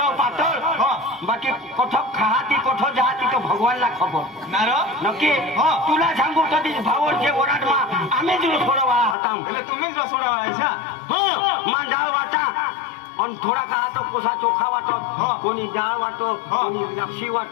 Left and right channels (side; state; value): right; drops out; at 9.2 s